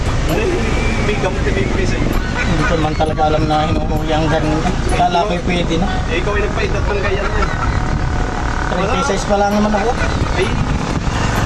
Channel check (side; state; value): both; identical; correlation 1.00